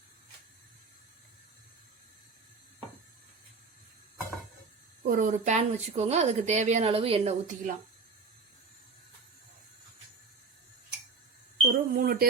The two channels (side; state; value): left; quieter; 4.4 dB